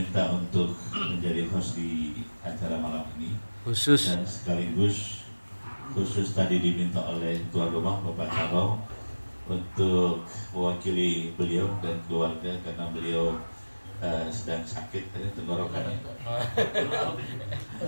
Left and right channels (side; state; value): both; inverted; correlation -1.00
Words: untuk menjadi host di acara malam ini Khusus. dan sekaligus khusus tadi diminta oleh tuan rumah Bapak Caro untuk mewakili beliau dan keluarga karena beliau sedang sakit tenggorokannya.